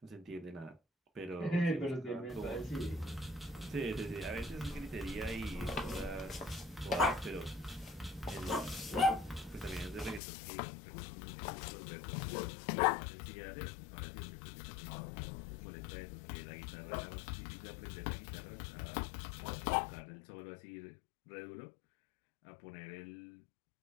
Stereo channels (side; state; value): right; drops out; at 10.2 s